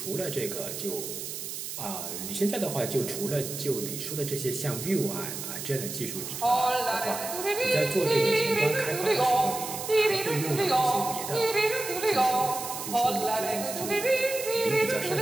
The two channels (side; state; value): right; noise; hiss, 7 dB below the sound